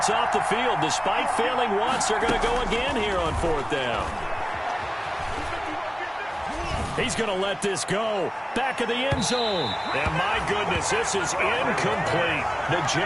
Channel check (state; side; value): identical; both; correlation 1.00